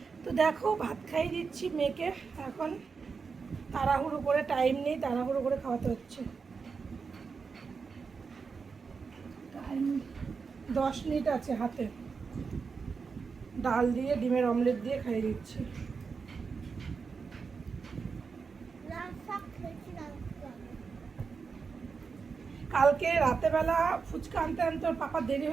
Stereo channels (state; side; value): quieter; left; 5.2 dB